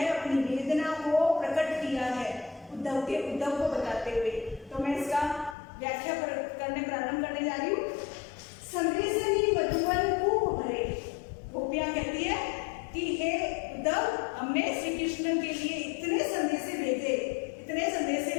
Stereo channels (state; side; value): drops out; right; at 5.6 s